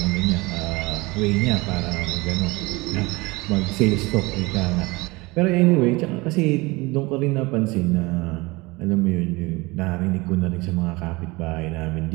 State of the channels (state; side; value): quieter; left; 23.5 dB